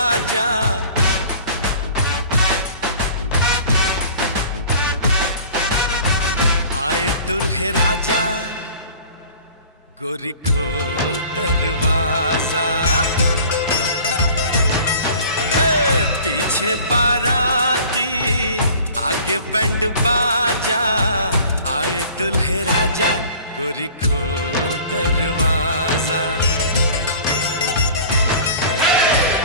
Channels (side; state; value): both; inverted; correlation -0.46